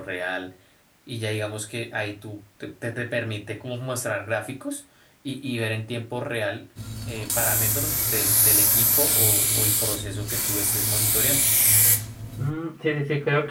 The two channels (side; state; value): both; identical; correlation 1.00